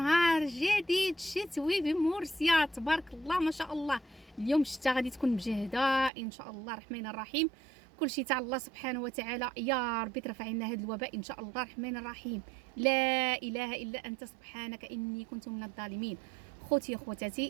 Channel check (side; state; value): left; drops out; at 6.1 s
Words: جديد شتوي بمورسيا، تبارك الله ما شاء الله. اليوم الشتاء غادي تكون مجهده ان شاء الله الرحمن الرحيم. كل شيء تاع الله سبحانه وتعالى، يا ربي ترفع عنا هذا الوباء ان شاء الله الرحمن الرحيم. لا اله الا انت سبحانك اني كنت من الظالمين. خوتي